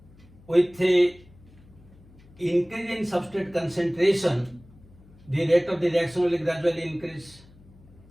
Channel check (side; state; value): left; noise; hum, 25 dB below the sound